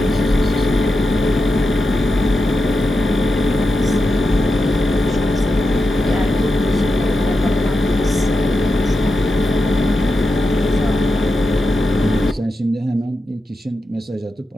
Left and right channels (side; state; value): both; normal; correlation 0.89